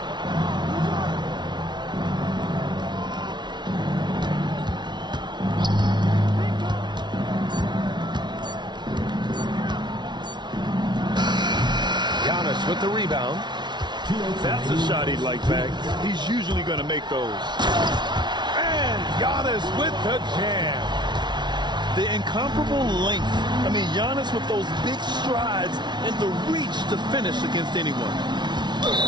Giannis with the rebound. That's a shot he'd like back. He's usually going to make those. And Giannis with the jam. The incomparable length. I mean, Giannis with those big strides and the reach to finish against anyone.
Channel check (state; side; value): late; left; 0.21 ms